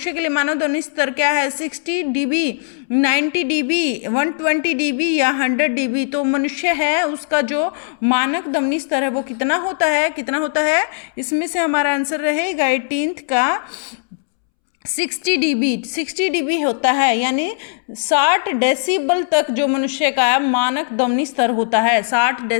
के लिए मानव ध्वनि स्तर क्या है? 60 dB, 90 dB, 120 dB या 100 dB। तो मनुष्य है उसका जो मानक ध्वनि स्तर है वो कितना होता है, कितना होता है? इसमें से हमारा आंसर रहेगा 18th का 60 dB, 60 dB होता है, यानी 60 डेसिबल तक जो मनुष्य का मानक ध्वनि स्तर होता है, 60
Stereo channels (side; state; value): right; silent; 67 dB below the other